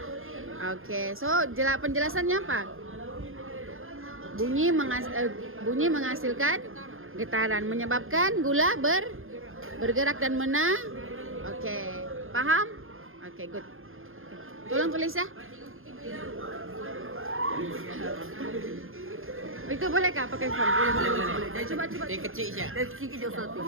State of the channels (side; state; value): left; late; 0.60 ms